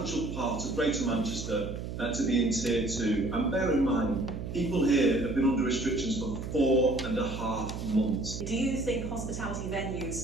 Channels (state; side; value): noise; right; hum, 7 dB below the sound